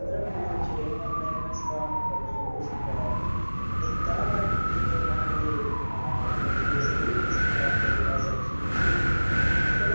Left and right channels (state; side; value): inverted; both; correlation -1.00